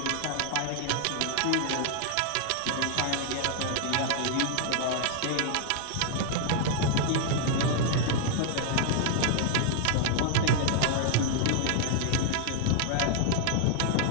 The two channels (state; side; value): different; both; correlation 0.00